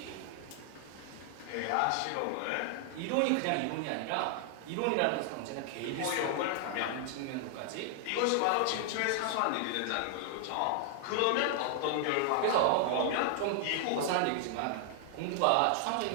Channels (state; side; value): different; both; correlation 0.00